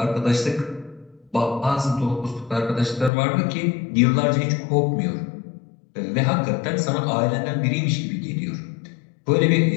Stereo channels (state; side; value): drops out; right; at 3.1 s